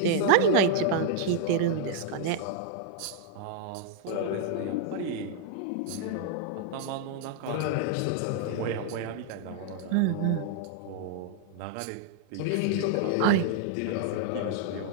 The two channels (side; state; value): both; different; correlation 0.00